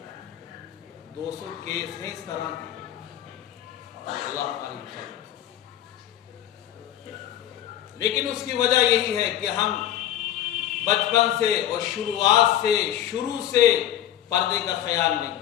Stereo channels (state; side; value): quieter; right; 11.9 dB